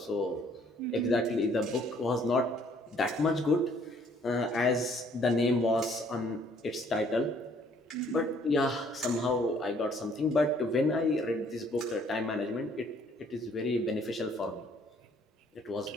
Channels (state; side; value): normal; both; correlation 0.62